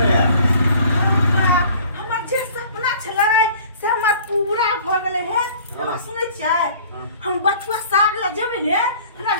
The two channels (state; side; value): inverted; both; correlation -0.50